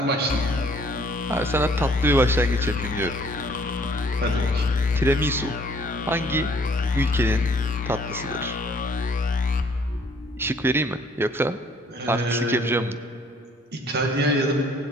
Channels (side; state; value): both; normal; correlation 0.60